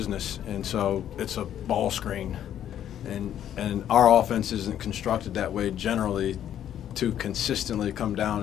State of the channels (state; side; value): quieter; right; 10.5 dB